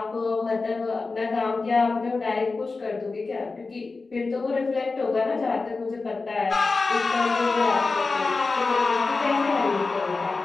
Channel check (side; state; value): right; quieter; 3.9 dB